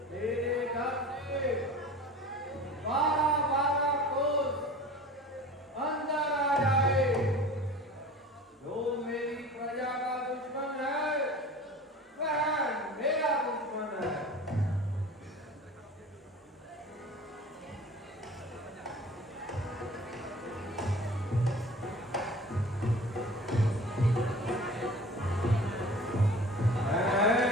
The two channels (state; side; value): normal; both; correlation 0.41